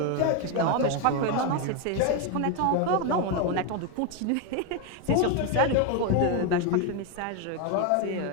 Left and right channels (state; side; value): different; both; correlation 0.01